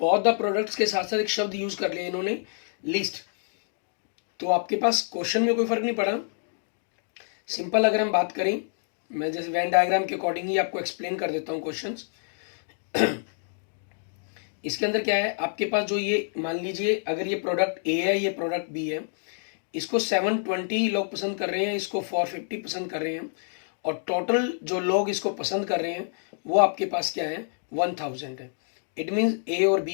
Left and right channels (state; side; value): silent; right; digital silence